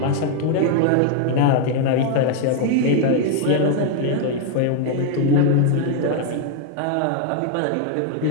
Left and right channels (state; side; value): different; both; correlation 0.00